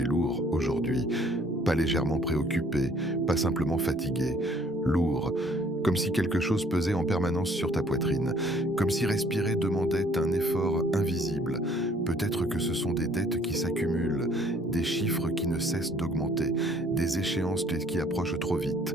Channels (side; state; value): both; normal; correlation 0.59